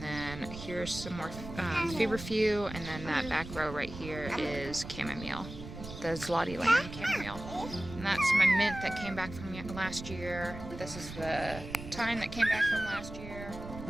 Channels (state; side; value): noise; right; rumble, 11 dB below the sound